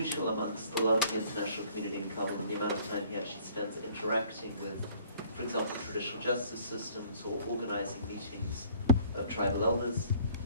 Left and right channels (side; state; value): both; inverted; correlation -0.55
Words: amongst a lot of the international community in Kabul, and the amount of time he actually spends interacting with, for example, traditional justice systems or organizing meetings of tribal elders,